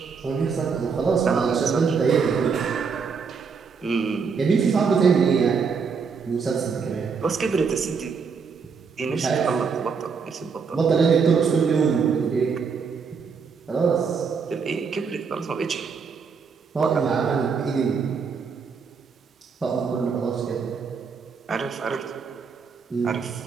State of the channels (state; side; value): quieter; left; 5.6 dB